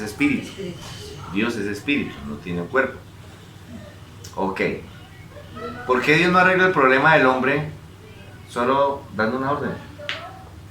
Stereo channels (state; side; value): identical; both; correlation 1.00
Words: espíritu. Sí. Dios es espíritu, no tiene un cuerpo. Ok. ¿Por qué Dios no arregla el problema del hombre solo dando una orden?